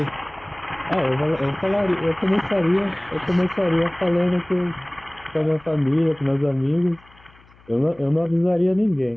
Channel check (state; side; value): noise; left; hum, 27 dB below the sound